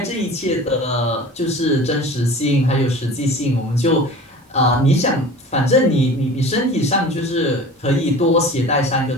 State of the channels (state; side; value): normal; both; correlation 0.39